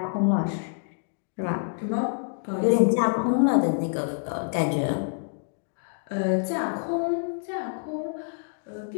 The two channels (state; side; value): silent; right; digital silence